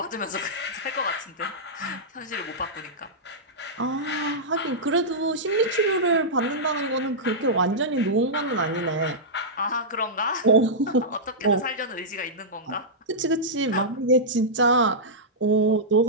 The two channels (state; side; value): normal; both; correlation -0.11